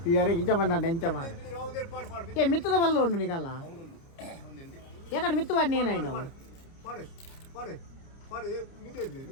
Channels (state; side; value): late; right; 29 ms